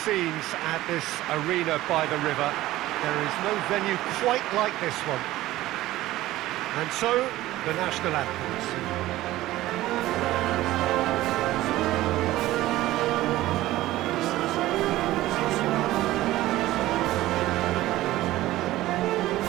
scenes at this arena by the river. There is no venue quite like this one. And so, the national anthems.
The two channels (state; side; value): quieter; left; 16.2 dB